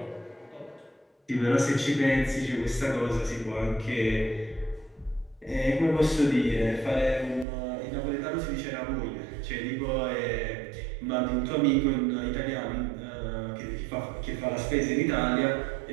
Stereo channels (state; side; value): drops out; left; at 7.5 s